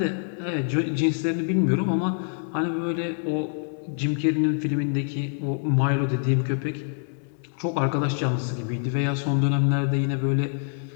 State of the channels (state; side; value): silent; right; 61 dB below the other